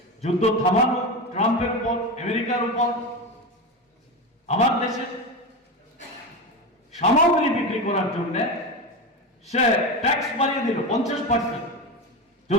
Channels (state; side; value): normal; both; correlation 0.20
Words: যুদ্ধ থামানো ট্রাম্পের উপর, আমেরিকার উপর। আমার দেশে সামগ্রী বিক্রি করার জন্য সে ট্যাক্স বাড়িয়ে দিল 50%।